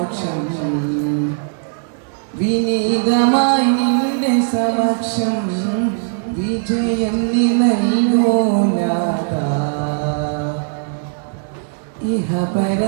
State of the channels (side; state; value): left; silent; 64 dB below the other